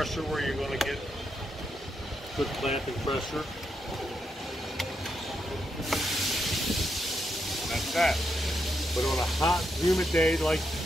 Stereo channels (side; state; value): both; normal; correlation 0.82